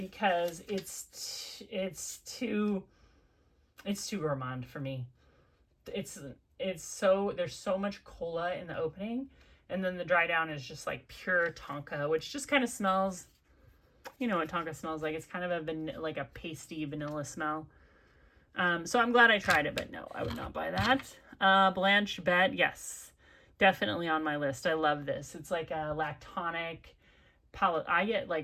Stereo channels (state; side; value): identical; both; correlation 1.00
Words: it's too gourmand for me. It's so, there's so much cola in the opening, and then the dry down is just like pure tonka, which just kind of smells, you know what tonka smells like. It's kind of like a pasty vanilla smell. So I'm glad I tried it, but no, I would not buy that. Blanche Bette, yes, definitely on my list. I love this. It's like a lactonic I get